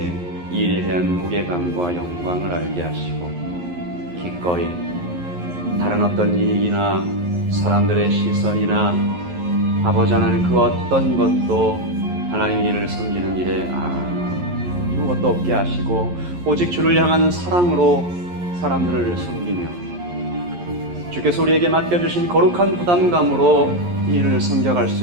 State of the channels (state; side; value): late; left; 11 ms